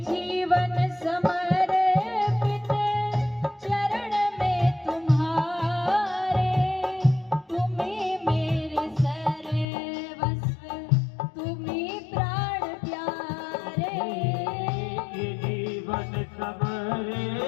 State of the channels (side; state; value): right; drops out; at 9.7 s